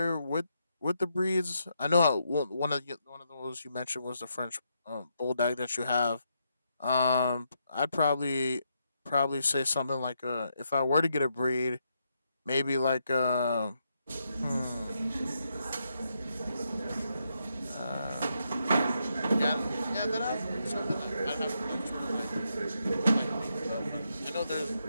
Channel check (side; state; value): both; inverted; correlation -0.80